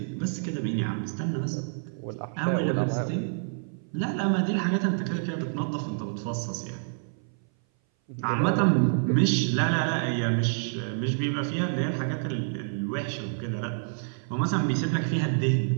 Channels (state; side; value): silent; left; 58 dB below the other